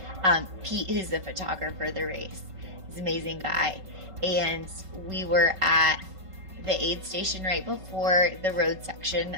Pete, who's the photographer of the race. He's an amazing guy. And we were at the aid station right before the road section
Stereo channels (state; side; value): late; left; 5.3 ms